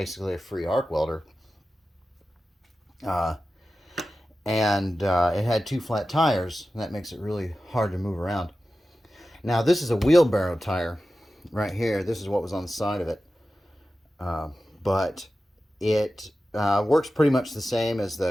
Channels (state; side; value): normal; both; correlation 0.94